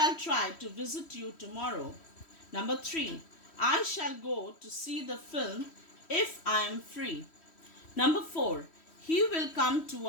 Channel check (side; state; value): right; late; 3.1 ms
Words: try to visit you tomorrow. Number 3. I shall go to see the film if I am free. Number 4. He will come to